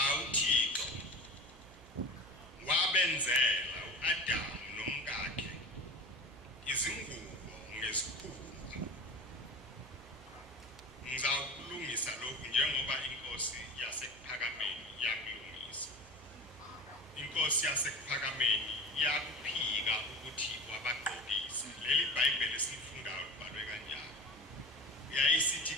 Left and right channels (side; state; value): right; noise; hum, 20 dB below the sound